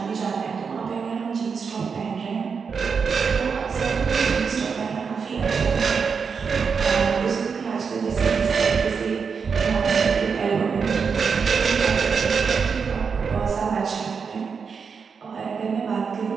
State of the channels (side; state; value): left; quieter; 5.8 dB